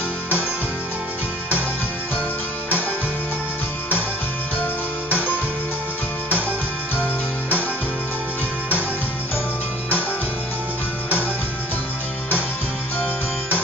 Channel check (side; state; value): both; normal; correlation 0.51